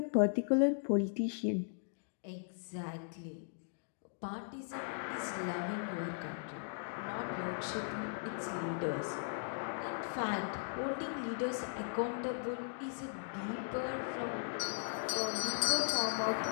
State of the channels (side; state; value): right; silent; digital silence